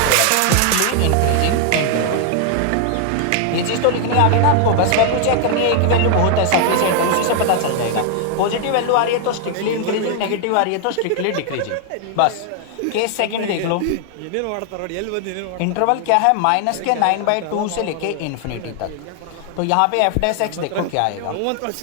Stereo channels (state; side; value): different; both; correlation 0.00